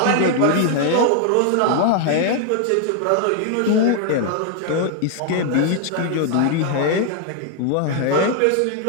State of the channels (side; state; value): both; different; correlation 0.00